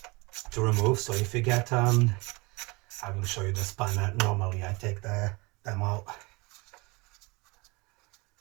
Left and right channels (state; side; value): quieter; left; 25.8 dB